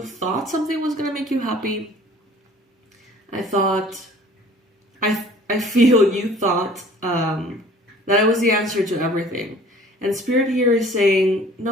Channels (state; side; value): normal; both; correlation 0.50